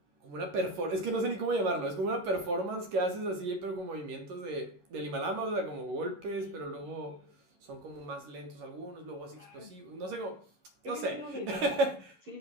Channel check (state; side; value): late; left; 11 ms